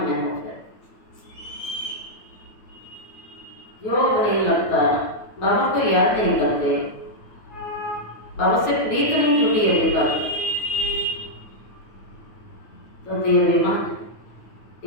में हो, फिर योग नहीं लगता, बाबा को याद नहीं करते, बाबा से प्रीत नहीं जुटी अभी तक, तो देहाभिमान,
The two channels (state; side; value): late; right; 9.2 ms